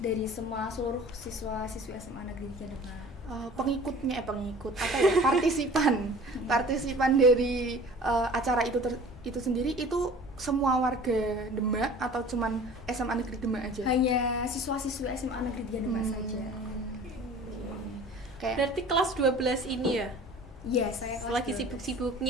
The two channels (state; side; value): normal; both; correlation 0.44